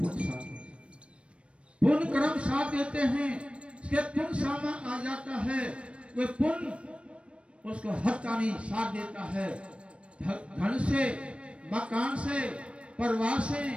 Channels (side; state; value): left; late; 0.060 ms